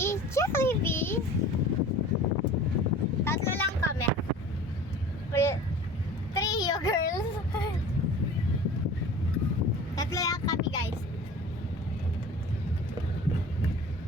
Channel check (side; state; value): both; normal; correlation 0.41